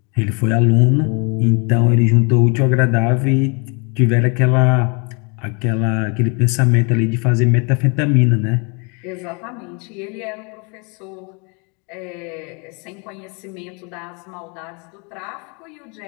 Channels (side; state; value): right; quieter; 33.7 dB